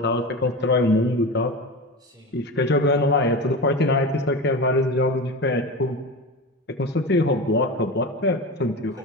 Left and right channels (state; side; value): normal; both; correlation 0.26